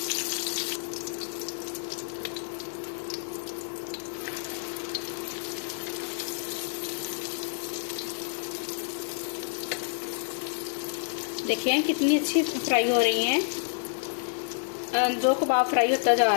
देखिए कितनी अच्छी फ्राई हो रही हैं। जो कबाब फ्राई होता जा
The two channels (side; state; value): right; silent; digital silence